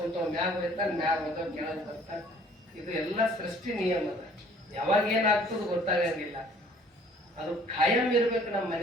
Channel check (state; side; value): normal; both; correlation 0.56